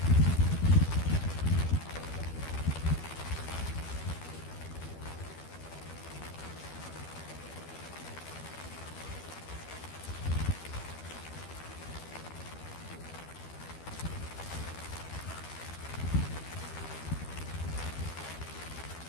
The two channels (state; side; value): late; right; 12 ms